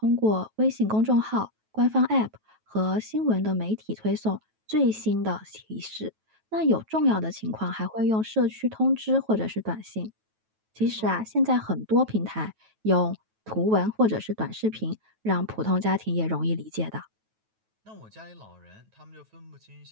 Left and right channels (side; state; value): left; late; 9.2 ms